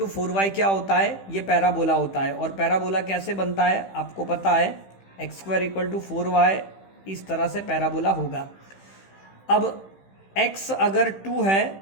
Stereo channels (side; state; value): right; late; 15 ms